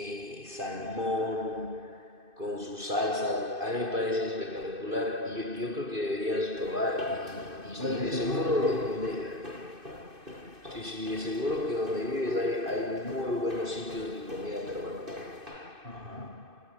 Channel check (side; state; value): left; late; 2.6 ms